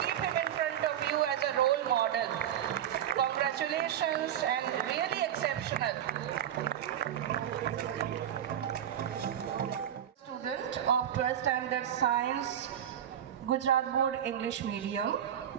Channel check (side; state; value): left; quieter; 10.2 dB